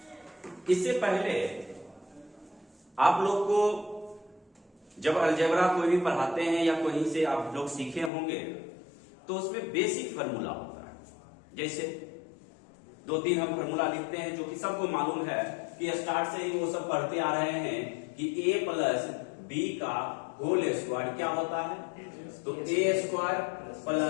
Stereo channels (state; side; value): drops out; right; at 8.1 s